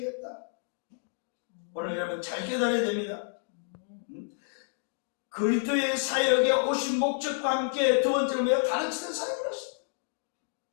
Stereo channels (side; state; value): right; silent; digital silence